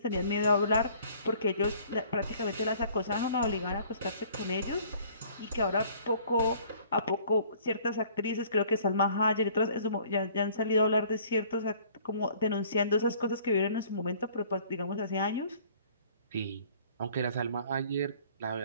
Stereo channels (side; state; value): both; inverted; correlation -0.55